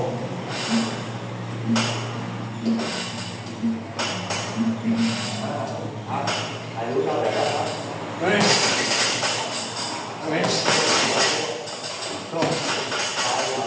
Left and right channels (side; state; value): both; identical; correlation 1.00